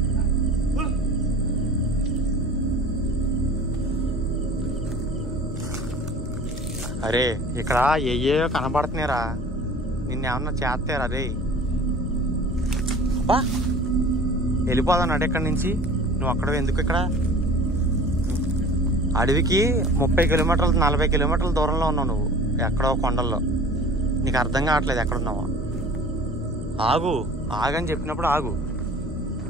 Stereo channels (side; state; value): both; normal; correlation 0.43